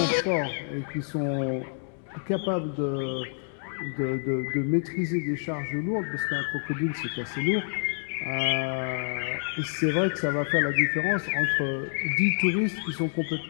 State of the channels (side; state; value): right; silent; digital silence